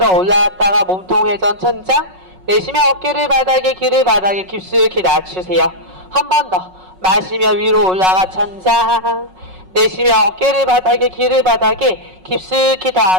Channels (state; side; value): late; left; 5.4 ms